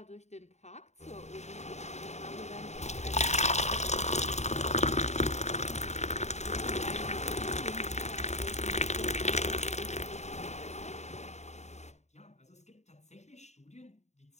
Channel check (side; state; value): right; late; 0.33 ms